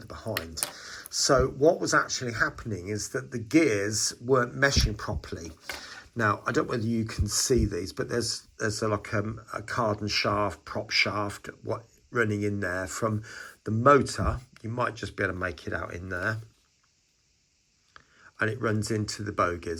behind. So what was actually happening is that the gears weren't meshing properly. Now, I don't know whether you can see these, but there's like a cardan shaft, prop shaft, running in there from the motor. You might just be able to make it out in there. And it runs into the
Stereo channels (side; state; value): both; identical; correlation 1.00